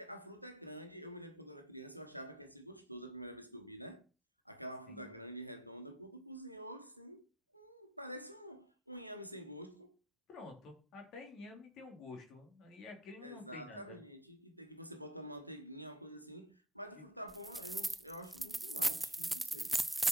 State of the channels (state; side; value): normal; both; correlation 0.54